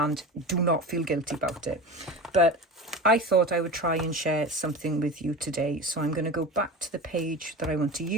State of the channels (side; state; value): both; normal; correlation 0.30